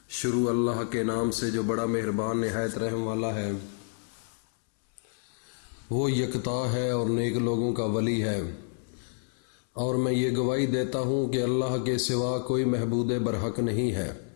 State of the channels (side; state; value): right; silent; 59 dB below the other